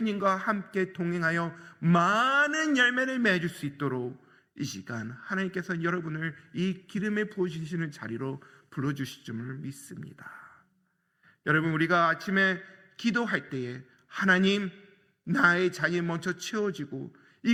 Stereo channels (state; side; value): identical; both; correlation 1.00